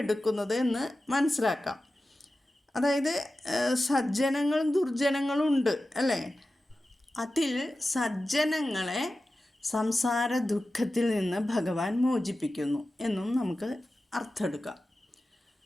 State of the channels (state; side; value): normal; both; correlation 0.94